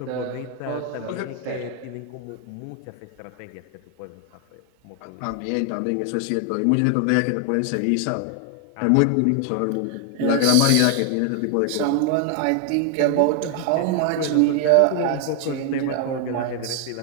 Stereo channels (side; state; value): both; different; correlation 0.00